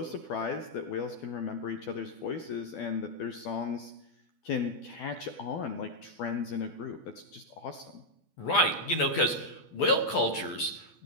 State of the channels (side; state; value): right; late; 12 ms